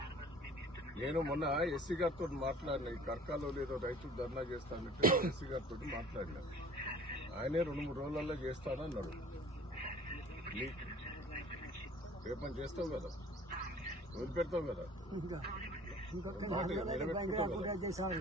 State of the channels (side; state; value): both; normal; correlation 0.48